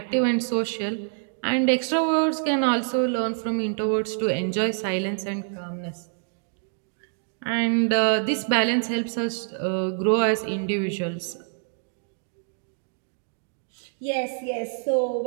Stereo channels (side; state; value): left; silent; digital silence